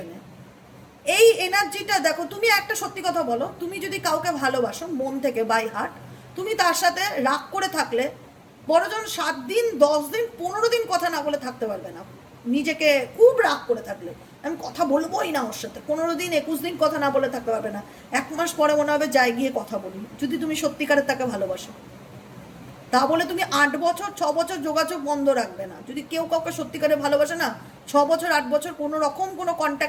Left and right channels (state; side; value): identical; both; correlation 1.00